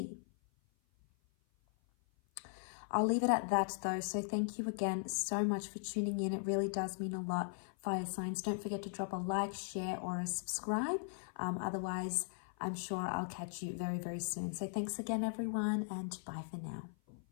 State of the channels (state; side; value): silent; right; 52 dB below the other